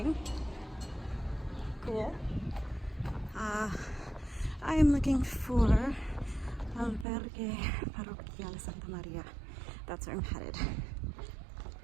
Cool. I am looking for Albergue Parroquial Santa María. That's where I'm headed.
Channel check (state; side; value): drops out; left; at 7.1 s